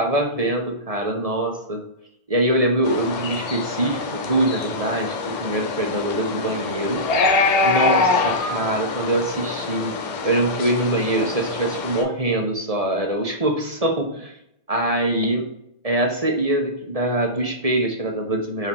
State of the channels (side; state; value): left; late; 1.7 ms